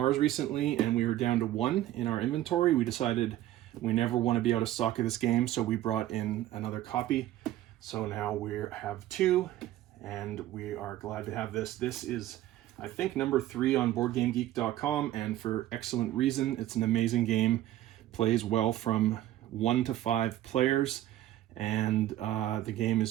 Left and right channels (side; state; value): left; quieter; 13.9 dB